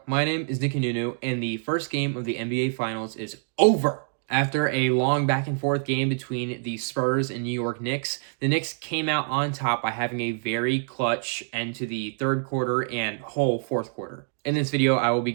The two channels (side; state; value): left; silent; digital silence